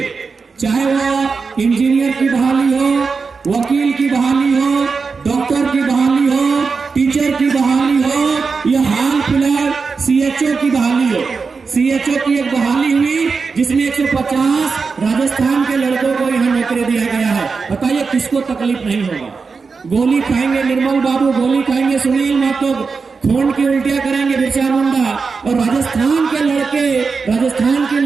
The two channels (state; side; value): quieter; left; 4.8 dB